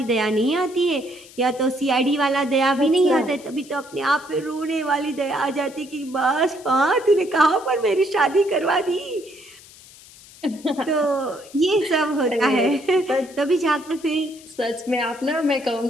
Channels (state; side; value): noise; left; hiss, 21 dB below the sound